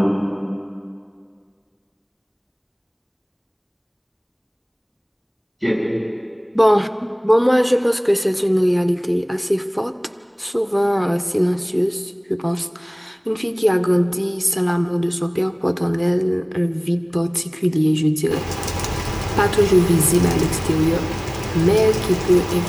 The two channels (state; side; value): identical; both; correlation 1.00